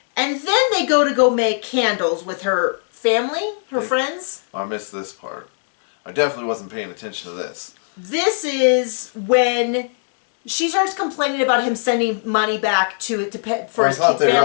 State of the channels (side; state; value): right; silent; digital silence